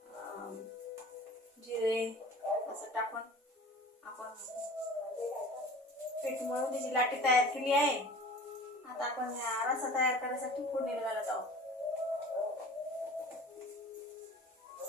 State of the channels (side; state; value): both; normal; correlation 0.42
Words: जिरे असं टाकून आपण पीठ मळून त्याची लाटी तयार केली आहे. आता आपण रसा तयार करण्यासाठी फोडणी घालत आहोत.